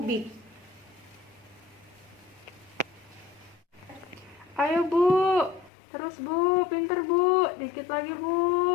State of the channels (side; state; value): right; drops out; at 5.7 s